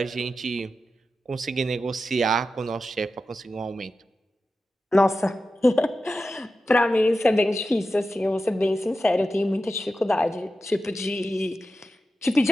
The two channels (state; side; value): normal; both; correlation 0.92